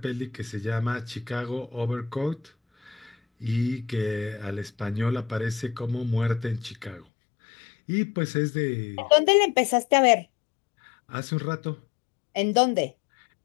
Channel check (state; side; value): drops out; right; at 7.1 s